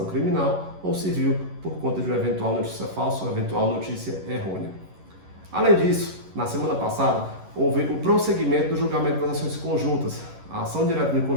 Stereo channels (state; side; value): late; left; 11 ms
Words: criminal ou civil por conta de uma eventual notícia falsa ou eventual notícia errônea. Além disso, na semana passada, houve o prosseguimento do julgamento das ações conjuntas, a ação direta de